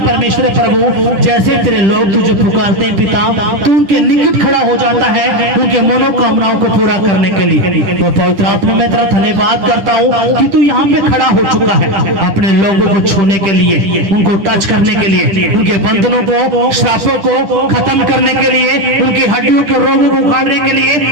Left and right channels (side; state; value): left; late; 10 ms